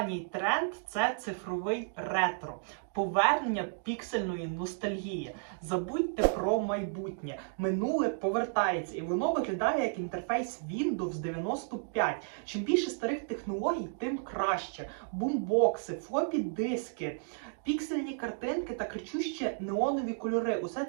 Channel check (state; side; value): silent; left; digital silence